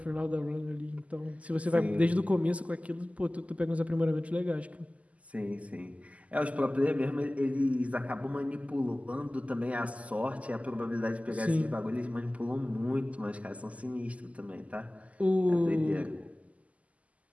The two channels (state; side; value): late; left; 0.070 ms